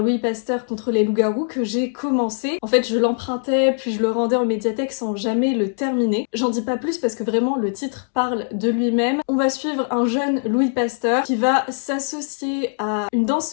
Louis Pasteur contre les loups-garous que j'ai commencé. En fait, je l'empruntais, puis je le rendais en médiathèque sans jamais le terminer. J'en dis pas plus parce que vraiment le titre parle de lui-même. On va suivre un jeune Louis Pasteur qui va s'associer à une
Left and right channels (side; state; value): right; silent; 65 dB below the other